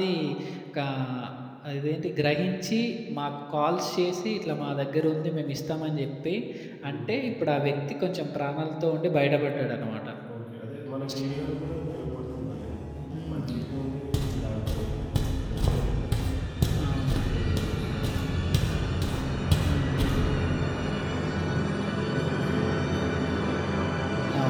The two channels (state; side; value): identical; both; correlation 1.00